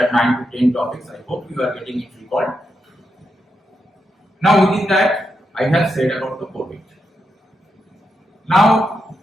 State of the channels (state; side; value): normal; both; correlation 0.85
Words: 9 to 10 topics. I hope you are getting it recalled. Now within that I have said about the COVID. Now